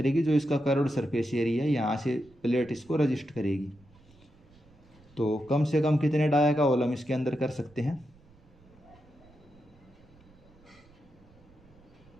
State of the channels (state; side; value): noise; right; rumble, 27 dB below the sound